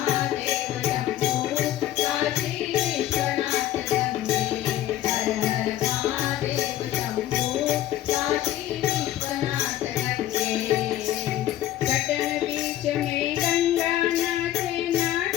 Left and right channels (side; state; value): right; quieter; 13.3 dB